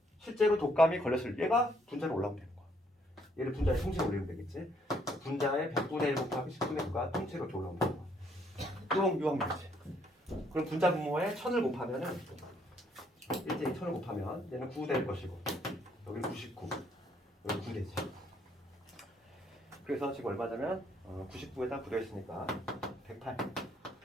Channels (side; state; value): both; normal; correlation 0.68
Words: 실제로 독감이 걸렸을 얘가 분자로 올라오면 되는 거야. 얘를 분자의 통째로 올리면 되겠지. 분자의 100분의 1 곱하기 10분의 9가 통째로 이렇게 올라오면 되는 거야. 유형이지. 그럼 분자 분모에 1000을 곱하면은 일제히 1000을 곱하면 얘는 9 될 것이고 여기는 99, 여기 9 되지. 그래서 지금 얼마냐면 99에다 9 되었으니까 108.